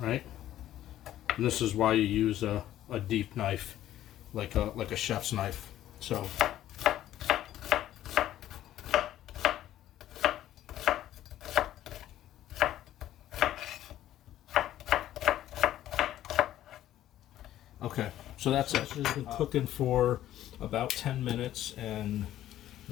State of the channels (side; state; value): right; quieter; 12.9 dB